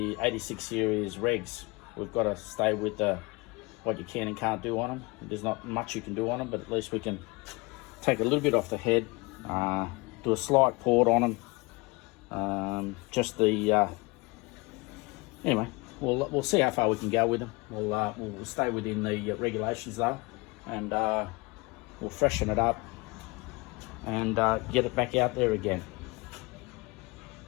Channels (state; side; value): quieter; right; 25.6 dB